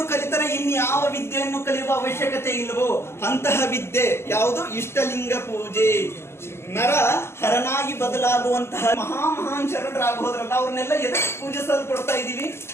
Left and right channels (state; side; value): late; right; 0.12 ms